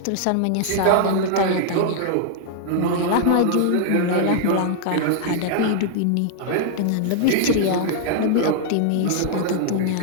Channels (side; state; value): both; different; correlation 0.00